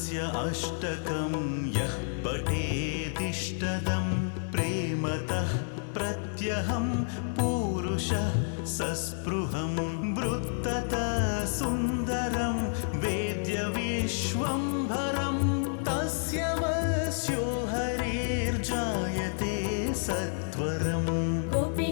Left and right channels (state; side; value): silent; right; digital silence